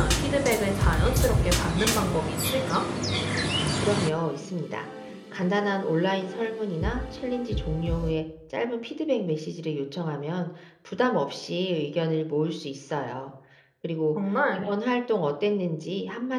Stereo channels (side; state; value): both; identical; correlation 1.00